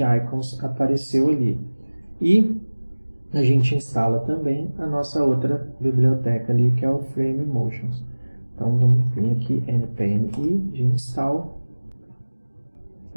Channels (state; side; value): inverted; both; correlation -1.00